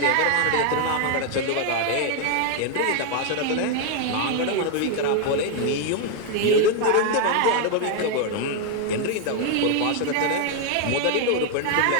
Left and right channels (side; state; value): both; different; correlation 0.00